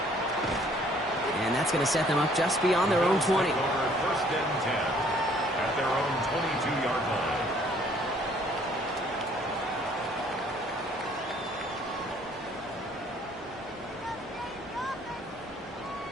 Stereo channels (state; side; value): normal; both; correlation 0.60